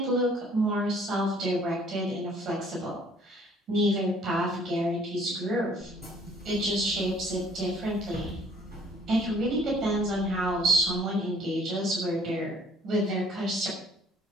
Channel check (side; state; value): both; normal; correlation 0.57